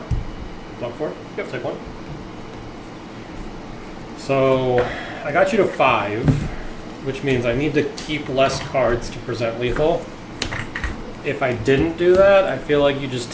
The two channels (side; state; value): both; identical; correlation 1.00